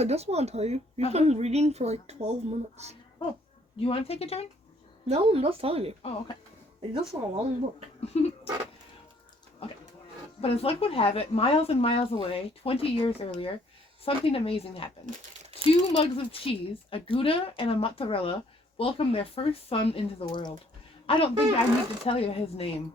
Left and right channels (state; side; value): normal; both; correlation 0.63